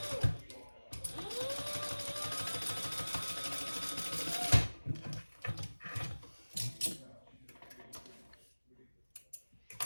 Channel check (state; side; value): inverted; both; correlation -1.00